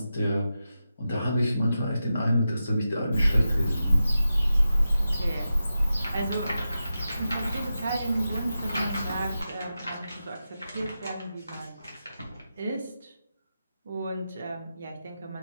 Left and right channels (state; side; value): inverted; both; correlation -0.91